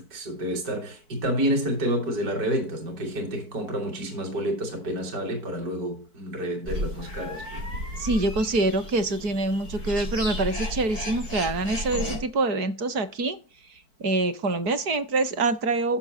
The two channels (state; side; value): late; left; 4.6 ms